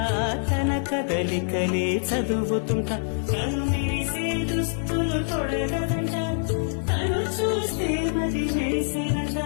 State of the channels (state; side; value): silent; right; digital silence